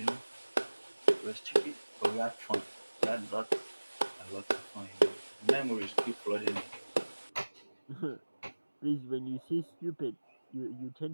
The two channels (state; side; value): inverted; both; correlation -1.00